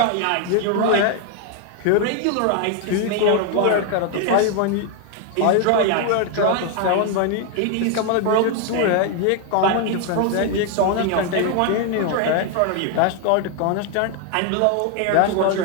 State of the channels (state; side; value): different; both; correlation 0.00